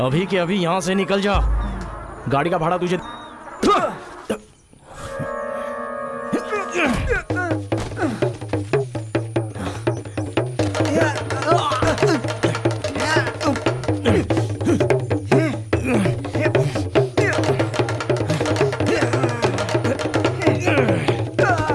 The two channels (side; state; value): both; identical; correlation 1.00